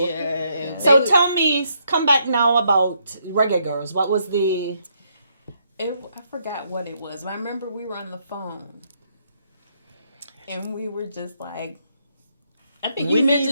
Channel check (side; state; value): both; inverted; correlation -0.74